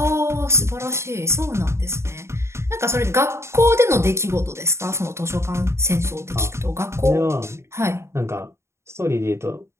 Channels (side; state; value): left; late; 0.13 ms